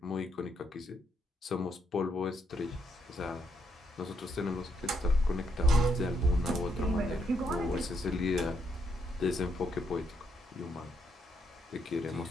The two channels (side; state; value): both; normal; correlation 0.76